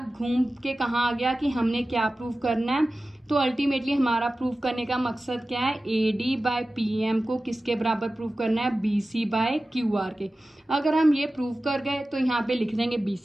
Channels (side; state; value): both; normal; correlation 0.95